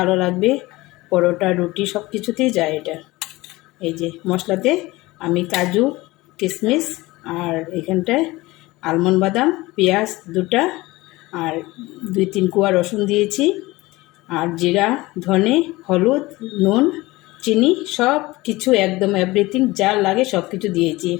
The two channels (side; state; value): right; quieter; 20.3 dB